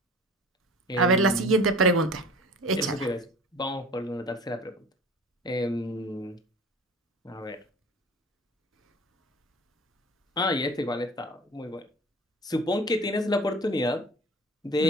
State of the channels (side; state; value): both; normal; correlation 0.40